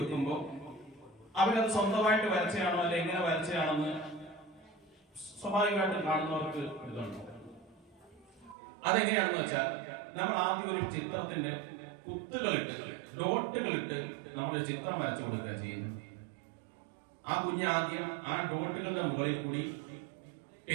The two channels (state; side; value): drops out; left; at 8.6 s